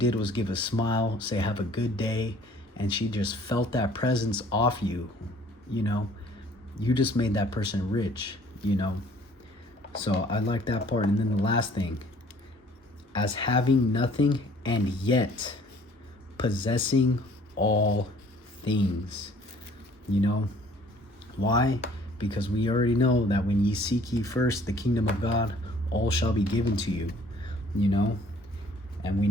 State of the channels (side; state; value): both; normal; correlation 0.56